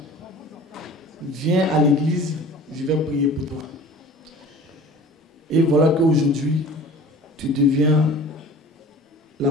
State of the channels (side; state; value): both; normal; correlation 0.42